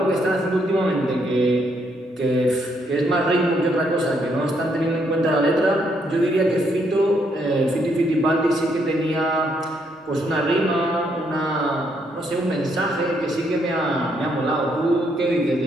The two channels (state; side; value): normal; both; correlation 0.73